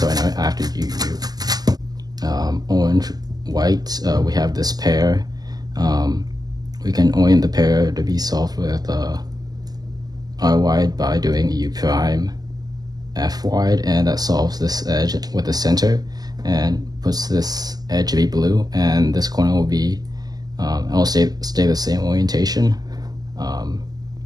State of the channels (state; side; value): late; left; 0.19 ms